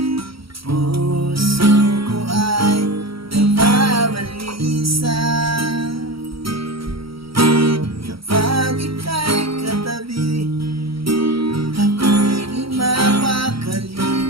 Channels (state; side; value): late; left; 0.75 ms